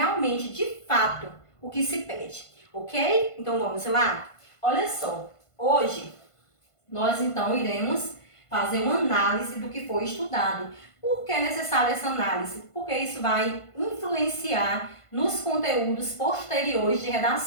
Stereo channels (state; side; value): late; right; 1.5 ms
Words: de fato, o que se pede, ok? Então vamos lá? Olha só, hoje nós então iremos fazer uma análise do que foi estudado. Por que é necessária essa análise? Porque isso vai influenciar nos conteúdos posteriores de